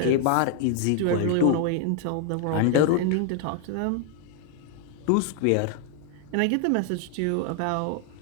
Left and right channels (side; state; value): both; different; correlation 0.00